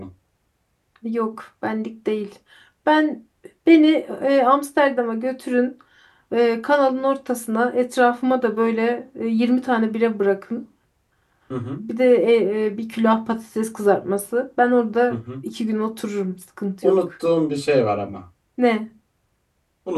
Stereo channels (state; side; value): identical; both; correlation 1.00